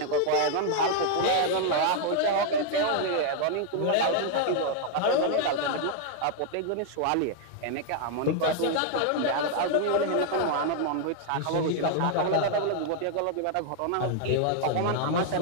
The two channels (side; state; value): both; different; correlation 0.00